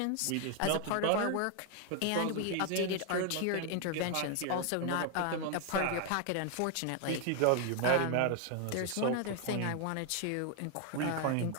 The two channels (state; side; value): different; both; correlation 0.00